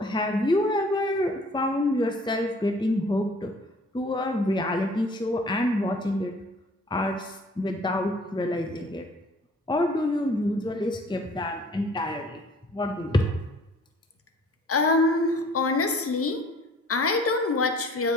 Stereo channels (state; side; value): normal; both; correlation 0.53